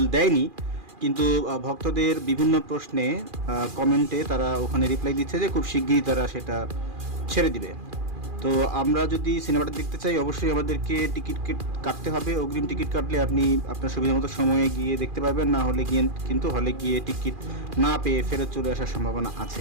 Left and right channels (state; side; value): late; left; 2.4 ms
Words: দেয়নি, কিন্তু ভক্তদের বিভিন্ন প্রশ্নে কমেন্টে তারা ওখানে রিপ্লাই দিচ্ছে যে খুব শিগগিরই তারা সেটা ছেড়ে দিবে। তো আমরা যদি সিনেমাটা দেখতে চাই, অবশ্যই আমাদেরকে টিকিট কাটতে হবে। অগ্রিম টিকিট কাটলে আপনি আপনার সুবিধা মতো সময়ে গিয়ে দেখতে পারবেন, না হলে গিয়ে কিন্তু হলে গিয়ে টিকিট না পেয়ে ফেরত চলে আসার সম্ভাবনা